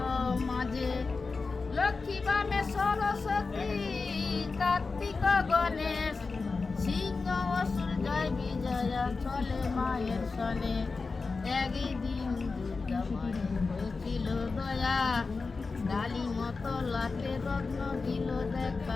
মাঝে। লক্ষ্মী বামে সরস্বতী, কার্তিক গণেশ, সিংহ অসুর জয় বিজয়া চলে মায়ের সনে। একদিন দুর্গা মায়ের হয়েছিল দয়া, ডালি মতো লাতে রত্ন দিল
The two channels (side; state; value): right; quieter; 4.2 dB